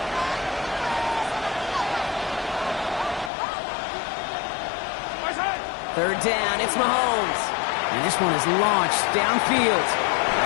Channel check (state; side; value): drops out; right; at 3.3 s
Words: Third down, it's Mahomes. And this one is launched downfield.